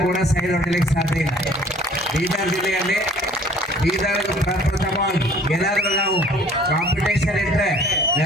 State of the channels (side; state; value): both; normal; correlation 0.53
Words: ಕೂಡ ಸೈಡ್ ಹೊಡಿಲಿಕ್ಕೆ ಸಾಧ್ಯ ಇಲ್ಲ. ಬೀದರ್ ಜಿಲ್ಲೆಯಲ್ಲಿ ಬೀದರ್ ಪ್ರಪ್ರಥಮವಾಗಿ ಏನಾದರೂ ನಾವು ಕಾಂಪಿಟೇಷನ್ ಇಟ್ಟರೆ,